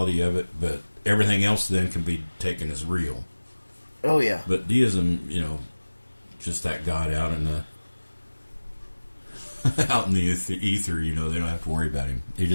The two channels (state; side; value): inverted; both; correlation -1.00